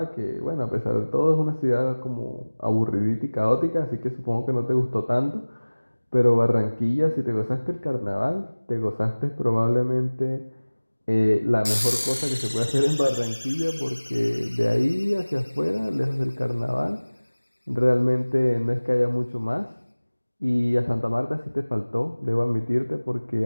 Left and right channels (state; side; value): inverted; both; correlation -1.00